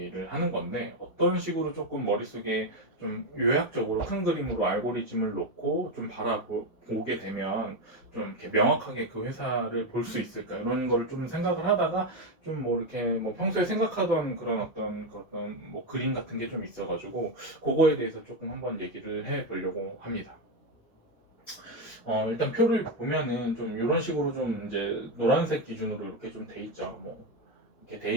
하는 건데, 어떤 식으로 조금 머릿속에 좀 요약적으로 큰 그림으로 알고리즘을 놓고 좀 바라보게 되면 좀 이렇게 명확하게 그 회사를 볼 수 있을까, 이런 거를 좀 생각을 하다가 좀 뭐 이렇게 뭐 평소에 생각하던 그런 어떤 뭐 그림 같은 게 좀 있어가지고, 그거에 대해서 조금 한번 얘기를 해 보려고 합니다. 일단 표를 보면은 좀 이런 식으로 좀 이제 노란색 기준으로 이렇게 좀 돼 있죠. 뭐 이렇게 돼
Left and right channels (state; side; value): late; right; 1.6 ms